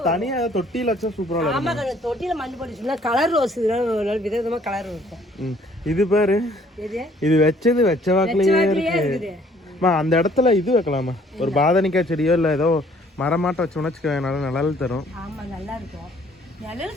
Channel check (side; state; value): both; normal; correlation 0.60